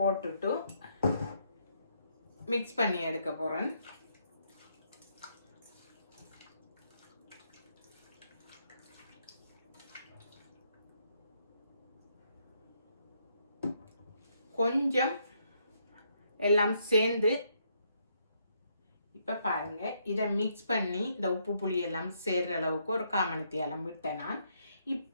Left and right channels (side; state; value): both; inverted; correlation -0.74